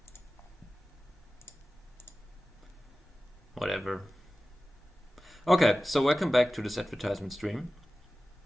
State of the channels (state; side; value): normal; both; correlation 0.96